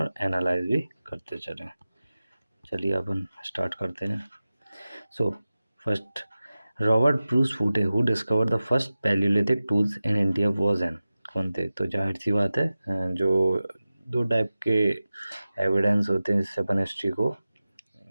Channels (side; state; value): both; inverted; correlation -0.95